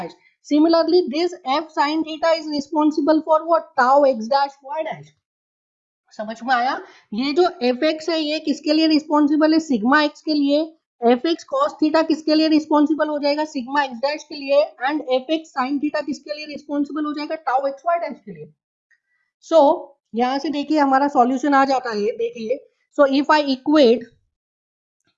Similarly, this f sin theta is responsible for what? Tau x dash y dash. समझ में आया. ये जो fx है ये किसके लिए responsible है, सिग्मा x के लिए. fx cos थीटा किसके लिए रिस्पॉन्सिबल हो जाएगा, सिग्मा x डैश के लिए. एंड fx sin थीटा किसके लिए रिस्पॉन्सिबल हो जाएगा, टाउ x y डैश के लिए. सो यहाँ से देखिए हमारा सॉल्यूशन आ जाता है. देखिए, so if I equate,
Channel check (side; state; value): both; identical; correlation 1.00